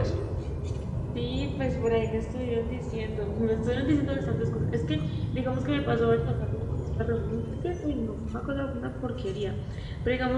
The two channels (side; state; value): both; identical; correlation 1.00